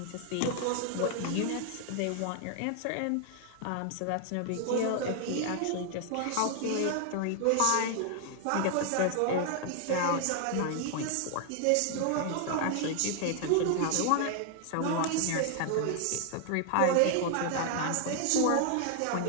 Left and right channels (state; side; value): different; both; correlation 0.00